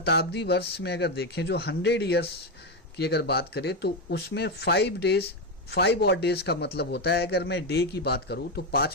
वर्ष में अगर देखें जो 100 ईयर्स की अगर बात करें तो उसमें 5 ऑड डेज का मतलब होता है, अगर मैं डे की बात करूं तो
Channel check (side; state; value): both; normal; correlation 0.10